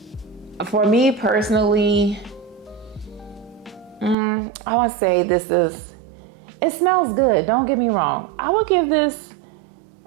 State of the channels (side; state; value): left; drops out; at 4.2 s